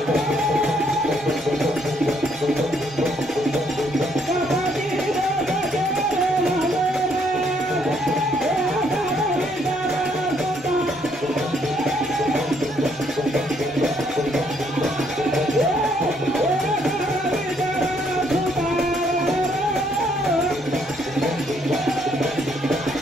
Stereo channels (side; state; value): both; normal; correlation 0.69